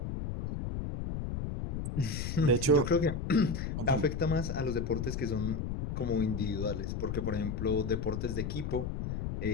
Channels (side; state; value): left; noise; rumble, 3 dB below the sound